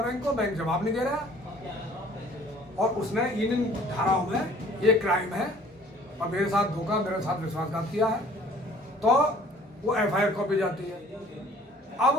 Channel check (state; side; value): normal; both; correlation 0.53